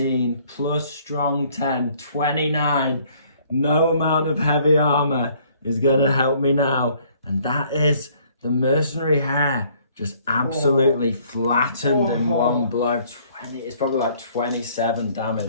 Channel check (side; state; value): both; inverted; correlation -0.61